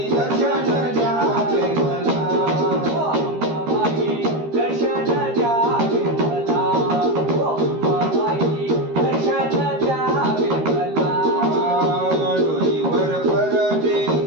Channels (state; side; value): late; left; 13 ms